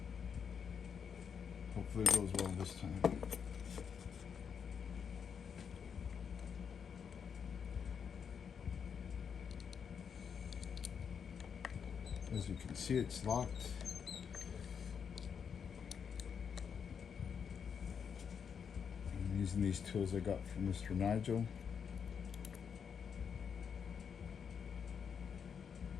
Hopefully it goes well this time. As you can see, it's locked. I'm using these tools I got from Mr. Nigel.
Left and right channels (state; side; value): quieter; right; 7.0 dB